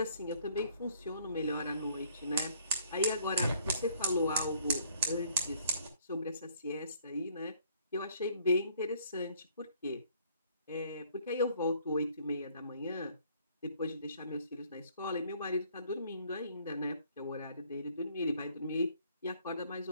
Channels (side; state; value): both; inverted; correlation -0.61